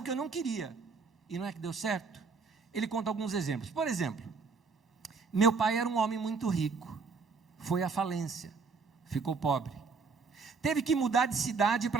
que eu não queria. E não é que deu certo? Ele conta alguns exemplos. Por exemplo, meu pai era um homem muito rico. Foi à falência. Ficou pobre. Teve que mudar de cidade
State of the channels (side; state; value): left; quieter; 4.8 dB